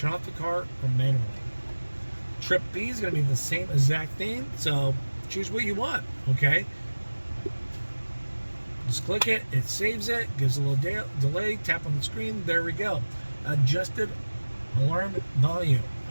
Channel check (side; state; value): both; inverted; correlation -1.00